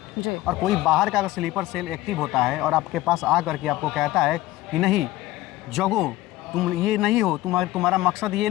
और कोई बाहर का अगर स्लीपर सेल एक्टिव होता है और आपके पास आ करके आपको कहता है कि नहीं जगो, तुम ये नहीं हो, तुम्हारा मकसद ये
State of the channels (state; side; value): quieter; right; 16.7 dB